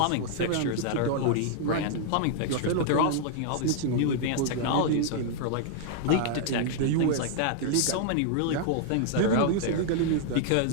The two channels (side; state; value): both; different; correlation -0.01